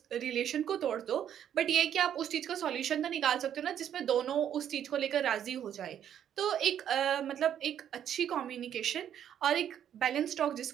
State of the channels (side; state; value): left; quieter; 9.8 dB